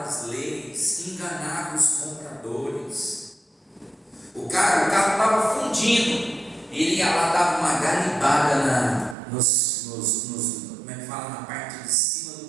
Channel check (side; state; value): left; drops out; at 9.2 s